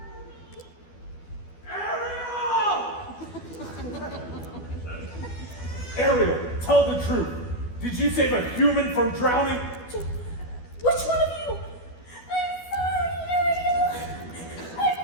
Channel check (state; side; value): late; right; 12 ms